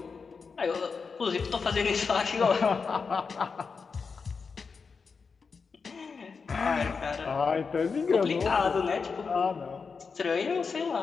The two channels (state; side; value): quieter; right; 5.2 dB